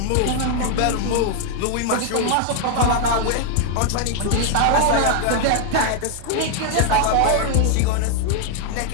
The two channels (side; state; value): both; different; correlation 0.00